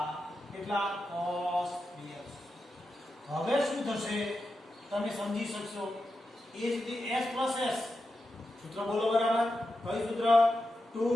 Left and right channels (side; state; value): both; normal; correlation 0.89